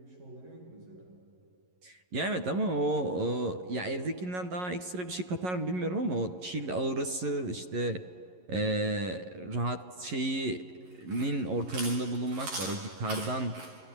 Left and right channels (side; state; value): left; late; 11 ms